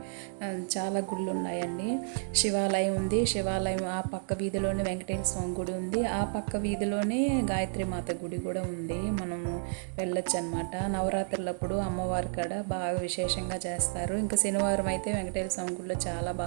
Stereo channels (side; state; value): left; silent; digital silence